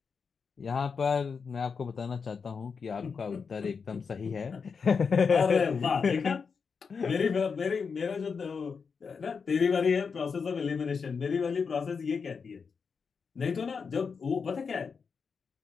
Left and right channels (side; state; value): right; quieter; 5.6 dB